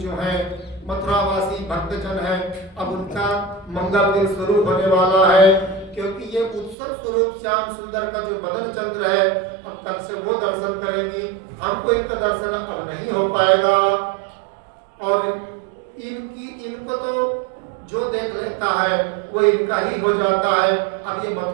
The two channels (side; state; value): left; drops out; at 6.8 s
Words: है, मथुरावासी भक्तजन है, अब उनका मंगल दिन शुरू होने वाला है, क्योंकि ये उत्सव स्वरूप श्याम सुंदर का जो बदन चंद्र है, अब कल से वो दर्शन करेंगी, हमको इनका दर्शन अब नहीं हो पाएगा। और इनको तो जो देख लेता है वो इनका ही हो जाता है। अब ये